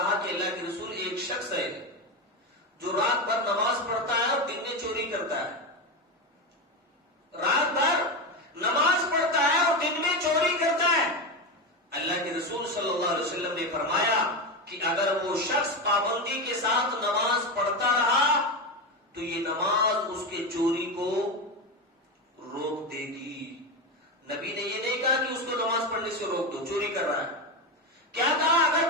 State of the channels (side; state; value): both; normal; correlation 0.15